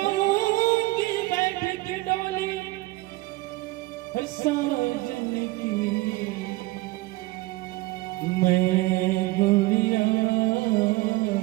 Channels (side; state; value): left; quieter; 20.5 dB